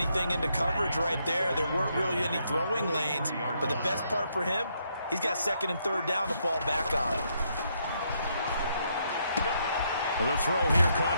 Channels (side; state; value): both; inverted; correlation -0.75